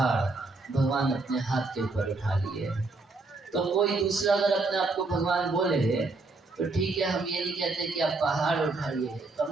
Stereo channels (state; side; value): quieter; left; 3.5 dB